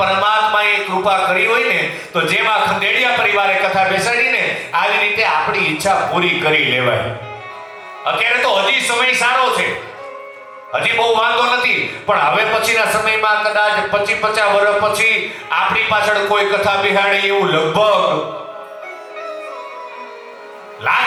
કૃપા કરી હોય ને, તો જેમાં ખંડેડિયા પરિવારે કથા બેસાડીને આવી રીતે આપણી ઈચ્છા પૂરી કરી લેવાય. અત્યારે તો હજી સમય સારો છે, હજી બહુ વાંધો નથી. પણ હવે પછીના સમયમાં કદાચ 50 વર્ષ પછી આપણી પાછળ કોઈ કથા બિહાડે એવું લગભગ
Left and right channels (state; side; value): identical; both; correlation 1.00